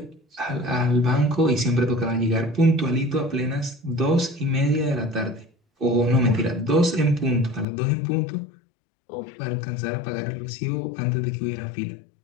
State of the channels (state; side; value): drops out; right; at 7.7 s